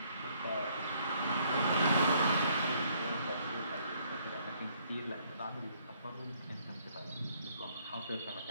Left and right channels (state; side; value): inverted; both; correlation -0.67